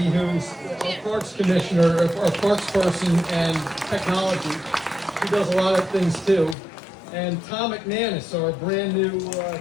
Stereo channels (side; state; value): right; drops out; at 6.6 s